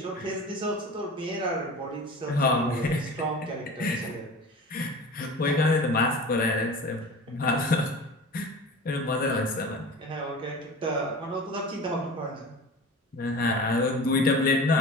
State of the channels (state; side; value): normal; both; correlation 0.36